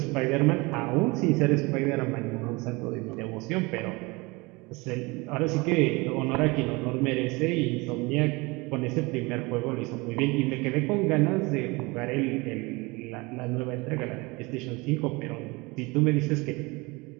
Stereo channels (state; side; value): quieter; left; 25.0 dB